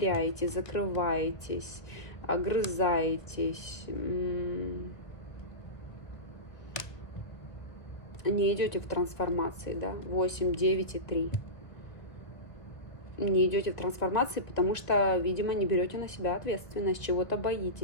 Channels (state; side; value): late; right; 1.2 ms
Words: закрываетесь, огрызаетесь. не идете в трансформации, да, 8, 9 и 3. Не идете в трансформации, потому что, видимо, не берете на себя ответственность, чего-то